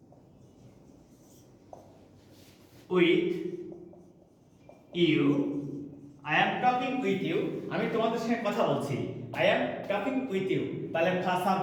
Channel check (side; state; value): both; identical; correlation 1.00